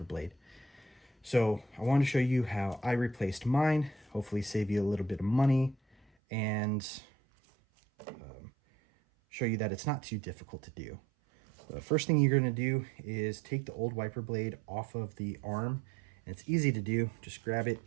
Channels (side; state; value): left; drops out; at 6.1 s